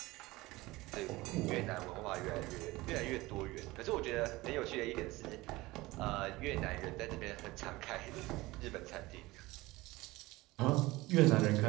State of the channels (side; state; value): left; quieter; 20.2 dB